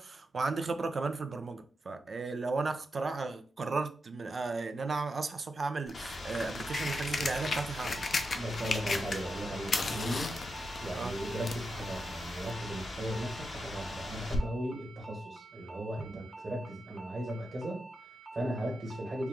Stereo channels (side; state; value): both; normal; correlation 0.87